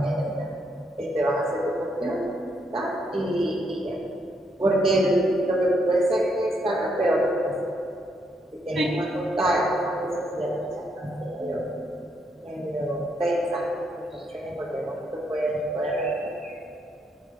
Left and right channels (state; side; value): normal; both; correlation 0.76